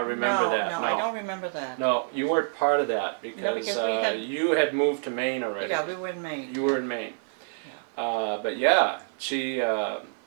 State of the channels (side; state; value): left; silent; 60 dB below the other